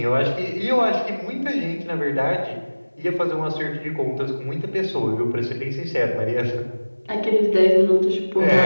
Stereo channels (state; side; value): inverted; both; correlation -1.00